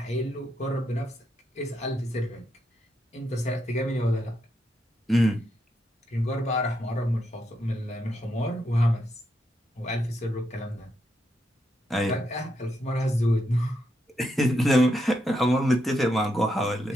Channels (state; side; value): normal; both; correlation 0.81